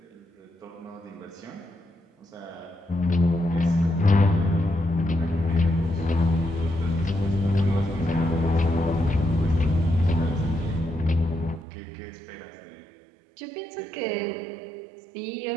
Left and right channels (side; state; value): left; drops out; at 11.7 s